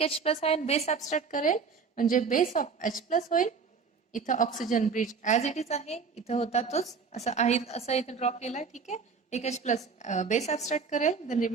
H+ आयन बेस ऍब्स्ट्रॅक्ट करेल म्हणजे बेस ऑफ H+ होईल. इथं oxygen bridge as it is आहे, इथं होता तोच असं आहे, असं इथं ड्रॉ केलाय. ठीक आहे, एक H+ बेस ऍब्स्ट्रॅक्ट करेल, देन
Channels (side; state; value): left; quieter; 5.4 dB